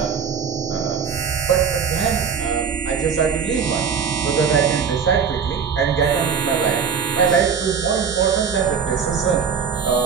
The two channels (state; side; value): quieter; left; 6.5 dB